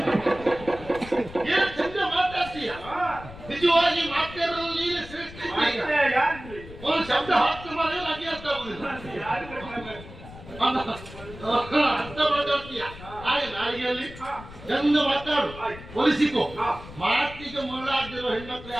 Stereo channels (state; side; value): noise; left; rumble, 15 dB below the sound